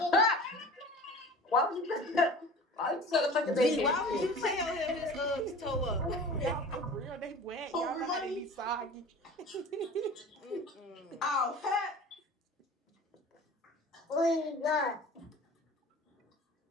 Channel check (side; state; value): both; normal; correlation 0.40